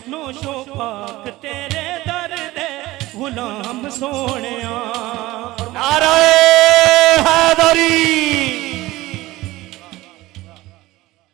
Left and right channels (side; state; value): left; quieter; 18.3 dB